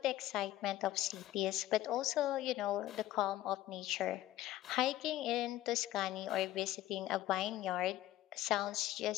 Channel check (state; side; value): quieter; right; 14.4 dB